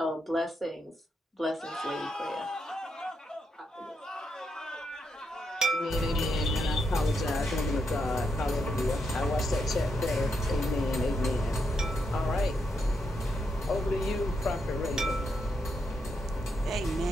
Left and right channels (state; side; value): normal; both; correlation 0.82